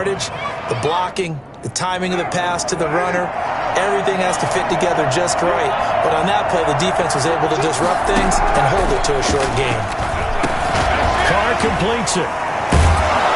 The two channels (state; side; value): identical; both; correlation 1.00